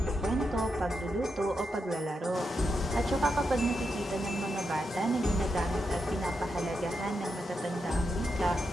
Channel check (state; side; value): normal; both; correlation 0.85